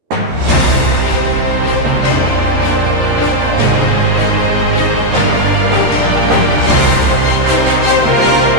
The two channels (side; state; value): left; late; 13 ms